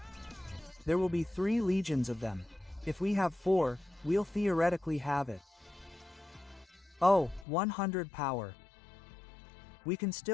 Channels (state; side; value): drops out; right; at 7.5 s